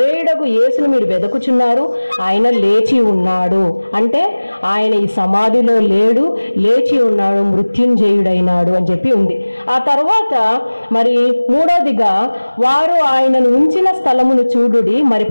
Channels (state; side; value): inverted; both; correlation -1.00